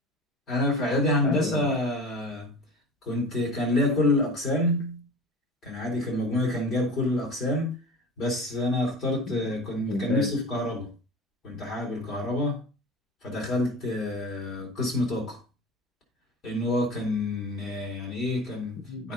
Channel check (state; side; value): normal; both; correlation 0.35